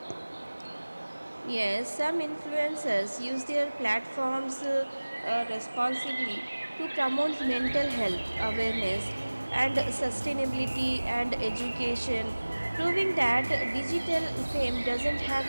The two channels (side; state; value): both; inverted; correlation -1.00